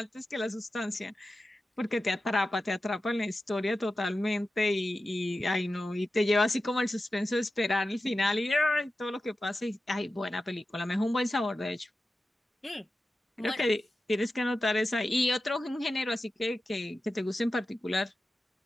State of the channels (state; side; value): normal; both; correlation 0.93